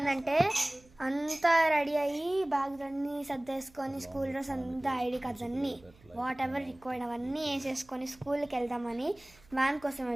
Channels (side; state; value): right; noise; hum, 27 dB below the sound